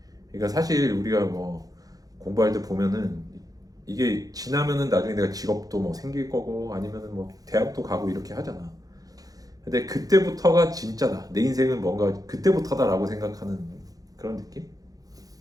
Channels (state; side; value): late; left; 0.18 ms